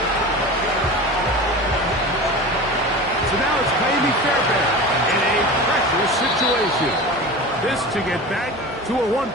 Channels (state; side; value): normal; both; correlation 0.32